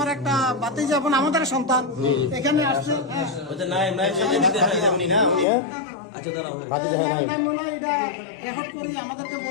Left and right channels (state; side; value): drops out; right; at 5.5 s